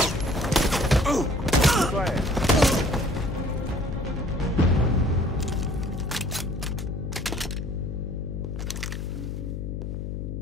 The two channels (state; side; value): noise; left; hum, 5 dB below the sound